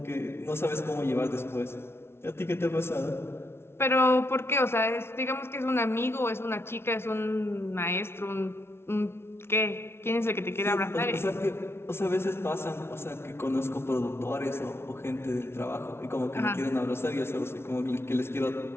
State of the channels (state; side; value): late; right; 0.12 ms